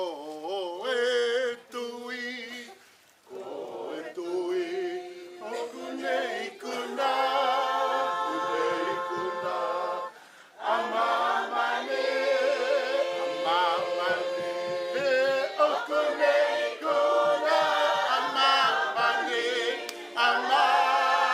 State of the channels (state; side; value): identical; both; correlation 1.00